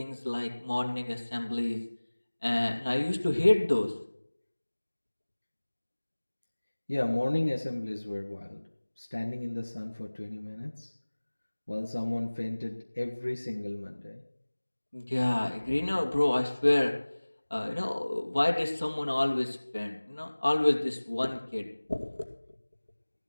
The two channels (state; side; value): inverted; both; correlation -1.00